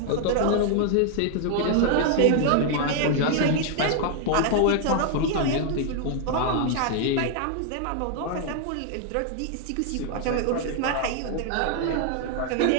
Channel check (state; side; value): different; both; correlation 0.00